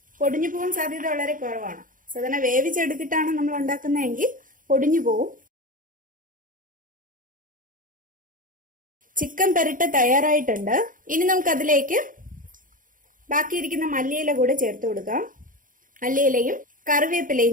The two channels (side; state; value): left; late; 0.39 ms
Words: പൊടിഞ്ഞു പോകാൻ സാധ്യത വളരെ കുറവാണ്. സാധാരണ വേവിച്ചെടുത്തിട്ടാണ് നമ്മൾ ഉണ്ടാക്കുന്നതെങ്കിൽ പൊടിഞ്ഞു പോവും. ചിക്കൻ പെരട്ട് തയ്യാറായിട്ടുണ്ട്. ഇനി നമുക്ക് അതിലേക്ക് ബാക്കിയിരിക്കുന്ന മല്ലിയില കൂടെ ചേർത്ത് കൊടുക്കാം. മല്ലിയിലയും കറിവേപ്പിലയും